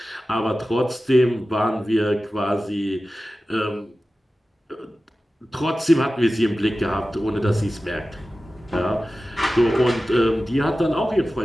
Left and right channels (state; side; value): normal; both; correlation 0.95